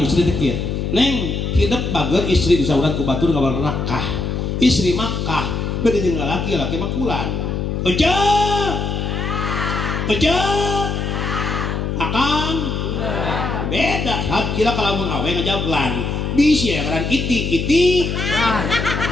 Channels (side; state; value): left; noise; hum, 2 dB below the sound